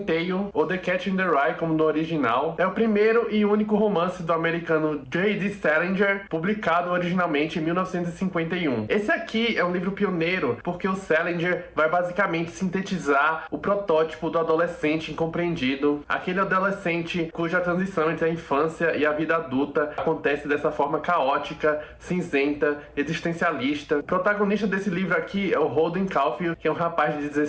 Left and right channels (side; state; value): both; identical; correlation 1.00